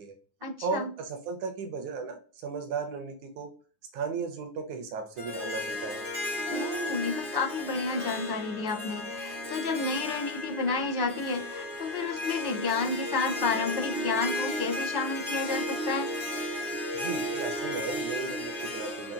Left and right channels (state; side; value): late; left; 9.6 ms